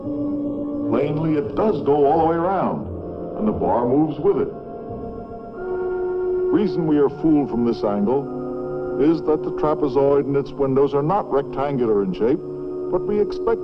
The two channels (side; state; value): both; identical; correlation 1.00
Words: Plainly, it does go all the way around, and the bar moves with it. Reason we are fooled from this angle is that the trapezoid and its windows are not rectangular in shape, but we